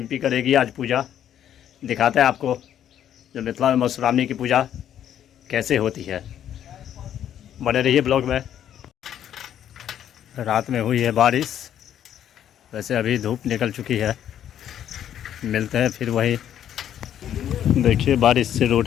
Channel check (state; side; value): quieter; right; 10.3 dB